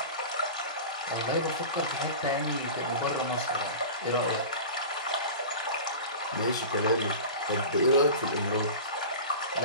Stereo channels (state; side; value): inverted; both; correlation -0.33